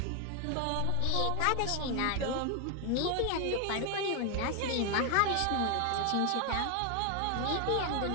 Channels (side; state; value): both; different; correlation 0.01